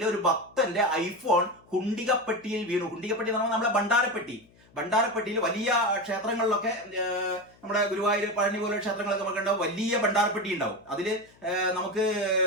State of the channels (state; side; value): noise; left; hum, 29 dB below the sound